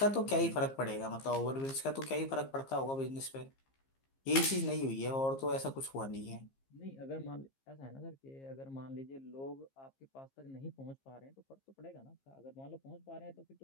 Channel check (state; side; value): late; right; 15 ms